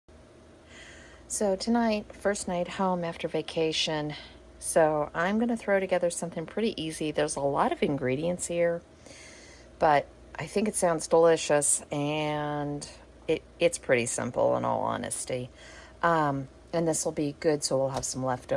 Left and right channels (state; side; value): identical; both; correlation 1.00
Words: So tonight, first night home after vacation, So I'm going to throw together something pretty easy. There's a lot of ingredients here, but I think it sounds delicious, and it's pretty simple in all honesty. And this will be good, so we'll have some